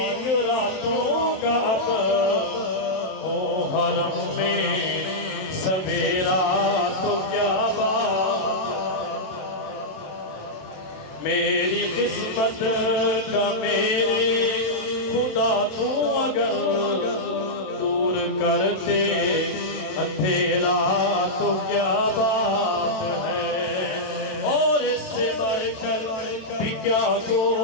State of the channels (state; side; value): late; right; 27 ms